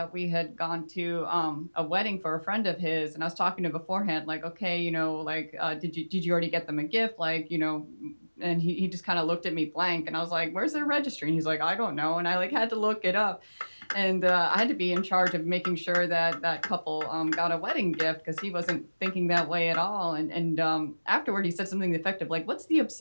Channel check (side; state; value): both; inverted; correlation -1.00